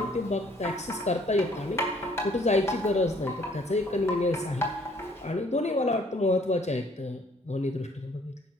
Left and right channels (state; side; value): normal; both; correlation 0.60